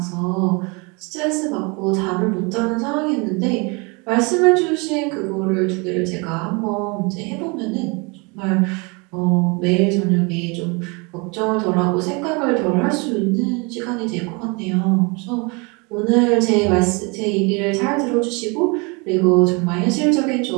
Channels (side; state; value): left; quieter; 30.0 dB